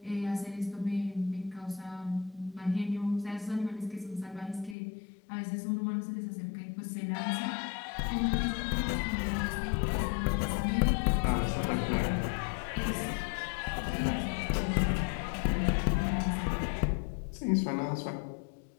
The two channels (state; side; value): drops out; right; at 4.8 s